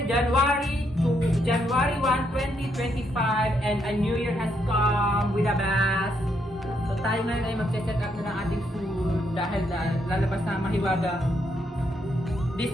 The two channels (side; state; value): both; normal; correlation 0.76